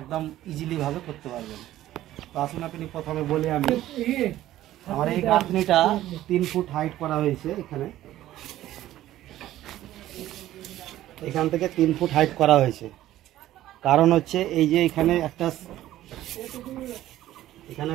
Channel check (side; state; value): left; quieter; 14.0 dB